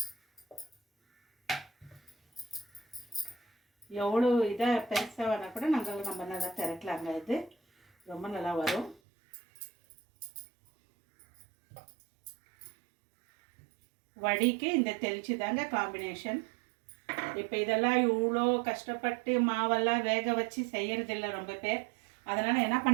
எவ்வளோ இதாக பெருசாக வேணால் கூட நம்ம நல்லா திரட்டலாங்க. இது ரொம்ப நல்லா வரும். வடிக்கு இந்த தெளிச்சு தாங்க காம்பினேஷன். இப்போ இதெல்லாம் இவ்வளோ கஷ்டப்பட்டு மாவெல்லாம் வேக வச்சு செய்யறதில்ல ரொம்ப பேர். அதனால் என்ன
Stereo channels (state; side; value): drops out; left; at 9.0 s